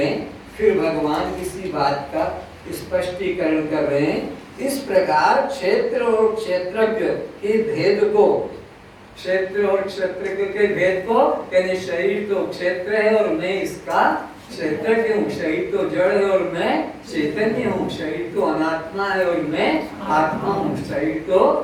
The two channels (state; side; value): identical; both; correlation 1.00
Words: फिर भगवान किसी बात का स्पष्टीकरण कर रहे हैं। इस प्रकार क्षेत्र और क्षेत्रज्ञ के भेद को क्षेत्र और क्षेत्र के भेद को, यानी शरीर तो क्षेत्र है और मैं इसका क्षेत्रज्ञ हूँ, शरीर तो जड़ है और मैं चैतन्य हूँ, शरीर तो अनात्मा है और मैं आत्मा हूँ, शरीर तो